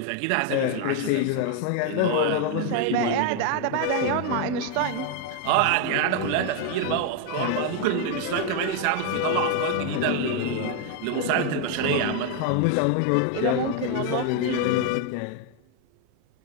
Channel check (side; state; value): both; different; correlation 0.01